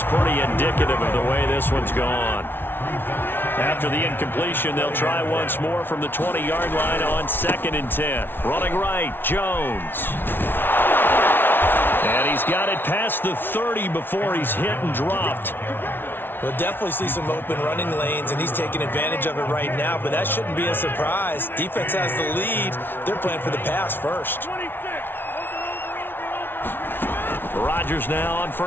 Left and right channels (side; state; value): right; late; 0.10 ms